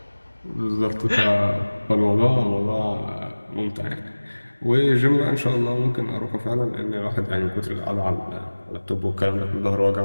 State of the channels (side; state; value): both; inverted; correlation -1.00